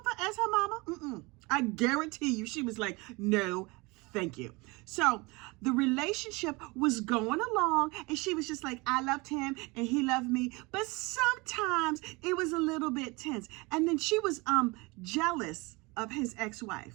as her mama? I guarantee you she was like, no, thank you. So the relationship was going along and she was just like, I loved him and he loved me. But sometimes it was a little bit tense. And then she was jealous of his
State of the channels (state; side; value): quieter; left; 25.5 dB